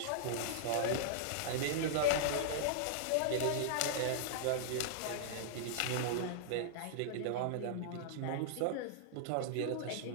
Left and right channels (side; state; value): both; different; correlation -0.02